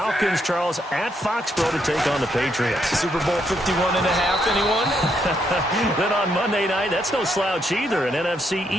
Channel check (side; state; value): both; normal; correlation 0.76